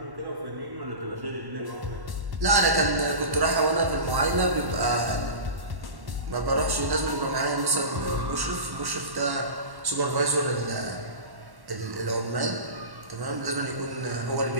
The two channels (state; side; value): late; left; 1.1 ms